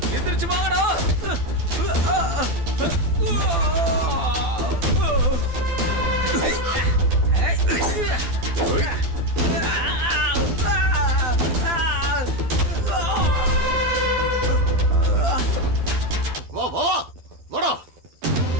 எந்திரிச்சு வாங்கடா. வா வா வா வாடா.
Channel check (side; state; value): left; late; 12 ms